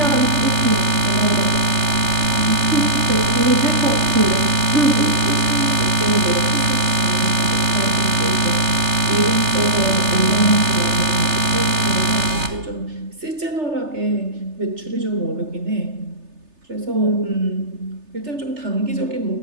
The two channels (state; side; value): late; left; 3.3 ms